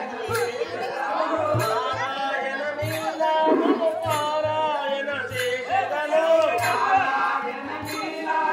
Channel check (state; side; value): identical; both; correlation 1.00